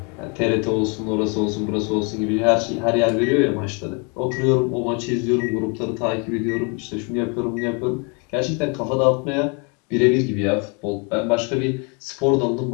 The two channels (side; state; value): right; quieter; 34.5 dB